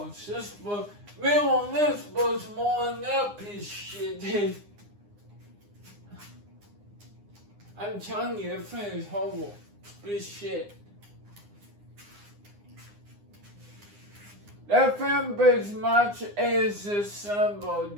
This was, on this was more than that piece of shit did. I'm telling you, that thing is horrible. Piece of shit. That thing as much as the Sunbow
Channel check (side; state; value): left; late; 9.8 ms